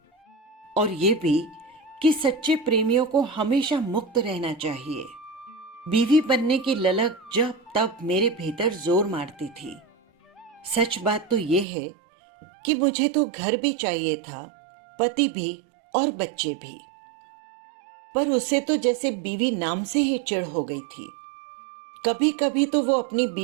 और ये भी कि सच्चे प्रेमियों को हमेशा मुक्त रहना चाहिए। बीवी बनने की ललक जब तब मेरे भीतर जोर मारती थी। सच बात तो ये है कि मुझे तो घर भी चाहिए था, पति भी और बच्चे भी, पर उसे तो जैसे बीवी नाम से ही चिढ़ हो गई थी। कभी कभी तो वो अपनी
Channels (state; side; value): drops out; left; at 11.7 s